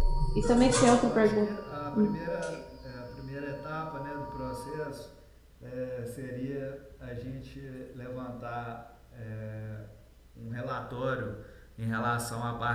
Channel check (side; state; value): both; identical; correlation 1.00